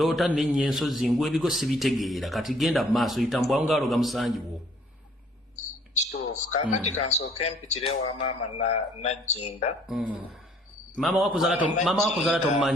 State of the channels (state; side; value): normal; both; correlation 0.60